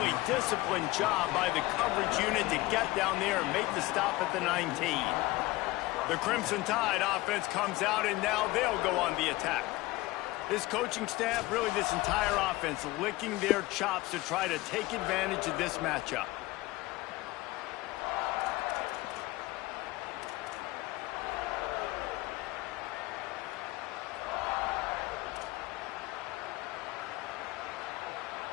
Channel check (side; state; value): right; quieter; 20.0 dB